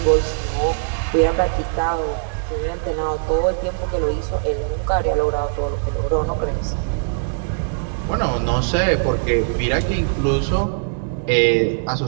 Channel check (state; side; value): silent; left; digital silence